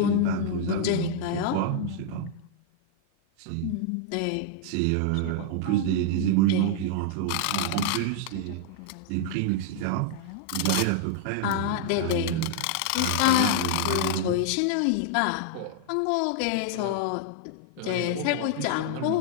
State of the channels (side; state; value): both; different; correlation -0.01